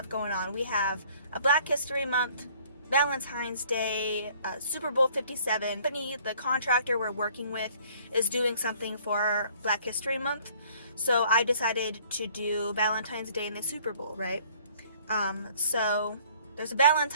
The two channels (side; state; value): both; inverted; correlation -0.57